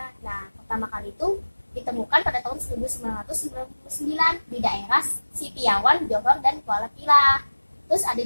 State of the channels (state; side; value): inverted; both; correlation -1.00